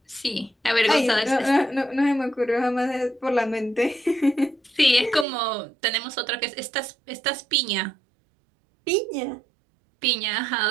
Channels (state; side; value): drops out; left; at 5.2 s